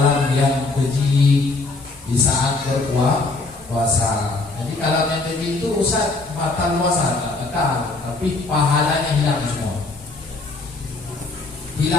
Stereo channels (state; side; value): quieter; right; 3.5 dB